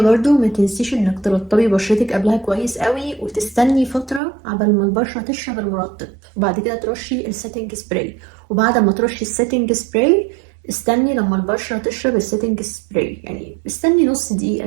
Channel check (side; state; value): left; drops out; at 4.2 s